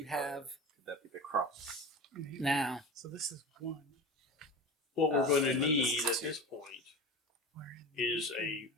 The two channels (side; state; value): both; normal; correlation 0.30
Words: have Could that be the cross? now. So this is one. What we're going to and then need this is at two. this point is a